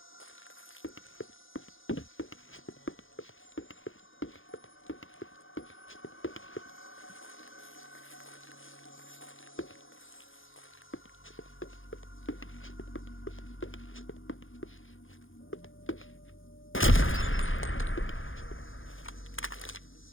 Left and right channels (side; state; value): right; late; 0.58 ms